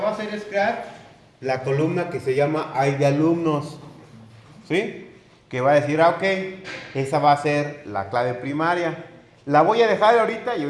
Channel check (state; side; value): identical; both; correlation 1.00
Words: a hacer es crear la columna que se llama ID de alumnos, ¿sí? Que va a decir, ok, esa va a ser la clave primaria. La voy a dejar ahorita y